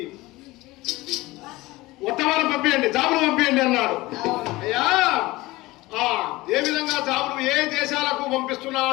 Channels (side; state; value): right; quieter; 19.9 dB